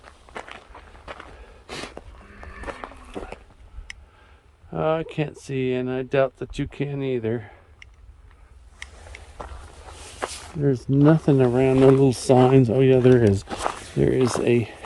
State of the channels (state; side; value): identical; both; correlation 1.00